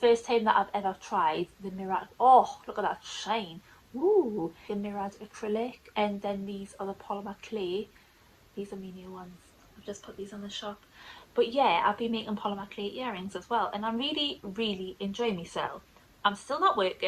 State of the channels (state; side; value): identical; both; correlation 1.00